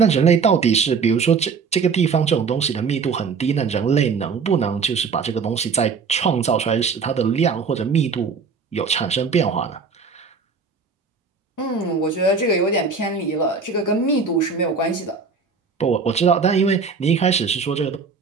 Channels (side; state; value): left; quieter; 5.2 dB